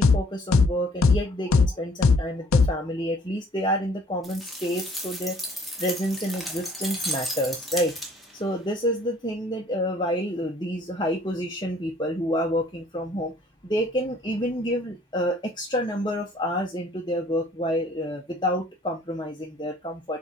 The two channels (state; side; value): normal; both; correlation 0.60